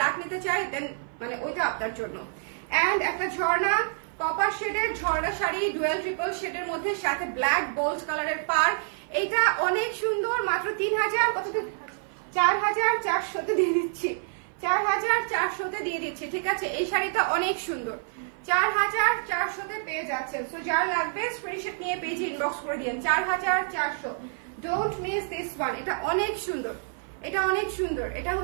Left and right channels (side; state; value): left; silent; 56 dB below the other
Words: নিতে চাই, দেন মানে ওইটা আপনার জন্য। এন্ড একটা ঝর্ণা কপার শেডের ঝর্ণা শাড়ি, ডুয়েল ট্রিপল শেডের মধ্যে, সাথে ব্ল্যাক বোল্ড কালারের পার। এটা অনেক সুন্দর, মাত্র 3000 কততে 4400 দিয়ে দিচ্ছি, 4400 দিয়ে দিচ্ছি, ঠিক আছে? এই শাড়িটা অনেক সুন্দর, 4400 পেয়ে যাচ্ছেন। সো যার লাগবে স্ক্রিনশট নিয়ে পেজে ইনবক্স করে দিন। 4400, ডোন্ট মিস দিস ওয়ান। এটা অনেক সুন্দর, এটা